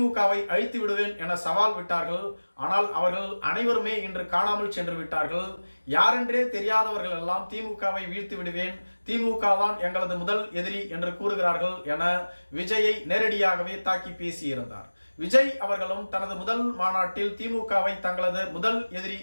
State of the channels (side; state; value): both; inverted; correlation -1.00